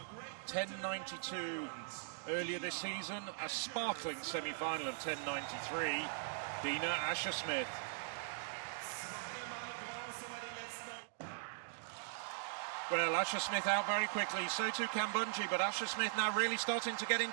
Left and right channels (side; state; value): left; silent; digital silence